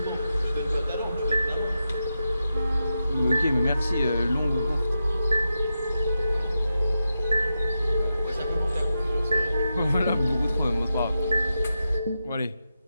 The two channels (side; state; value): both; inverted; correlation -0.88